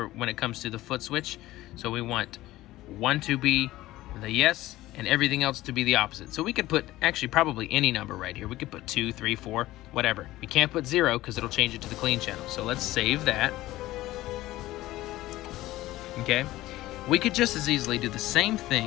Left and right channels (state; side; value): quieter; right; 16.6 dB